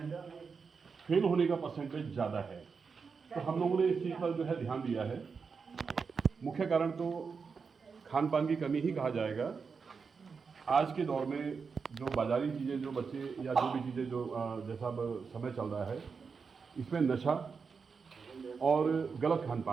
फेल होने का परसेंटेज ज़्यादा है। तो हम लोगों ने इस चीज़ पर जो है ध्यान दिया है। मुख्य कारण तो खान पान की कमी ही कहा जाएगा। आज के दौर में जो बाज़ारी चीज़ें जो बच्चे या जो भी चीज़ें जो जैसा अब समय चल रहा है, इसमें नशा और गलत खान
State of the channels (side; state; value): left; quieter; 5.4 dB